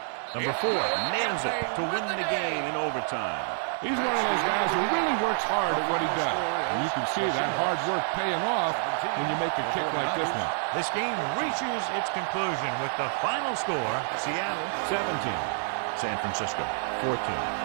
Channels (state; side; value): silent; left; digital silence